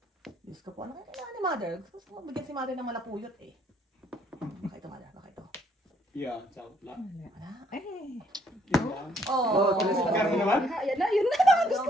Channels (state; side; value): normal; both; correlation 0.67